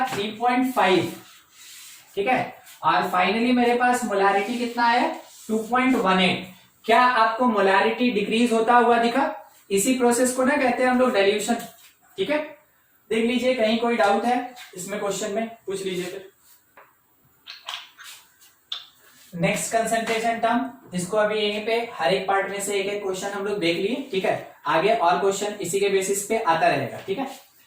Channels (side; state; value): both; identical; correlation 1.00